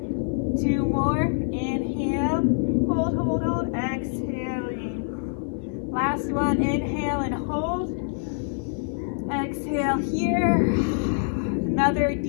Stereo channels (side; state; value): right; silent; digital silence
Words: 2 more. Inhale. Hold, hold, hold. Exhaling. Last one. Inhale and hold. Exhale here. Another